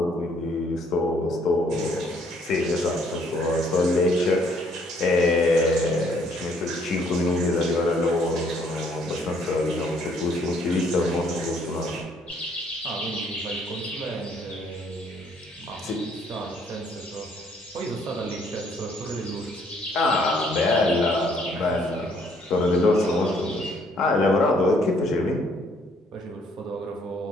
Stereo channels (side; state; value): both; normal; correlation 0.65